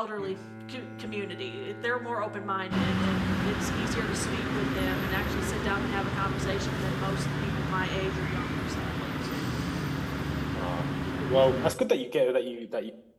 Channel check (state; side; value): identical; both; correlation 1.00